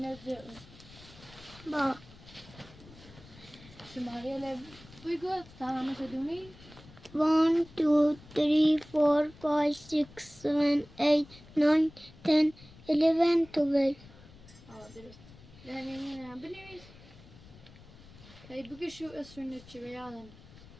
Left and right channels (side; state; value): left; noise; rumble, 21 dB below the sound